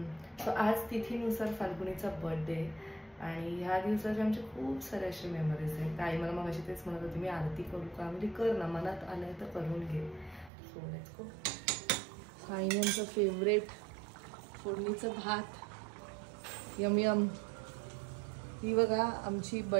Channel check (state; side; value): drops out; left; at 10.5 s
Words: सो आज तिथीनुसार फाल्गुनीचा बर्थडे आणि ह्या दिवसाचे आमचे खूप सारे असे मेमरीज आहेत. ताई मला मग अशी तेच म्हणत होती मी आरती करू का, म्हणजे कर ना, मनात आलं तर करून घे. So let's go. साईनांचं फेवरेट फोडणीचं भात, यम यम. ही बघा आमची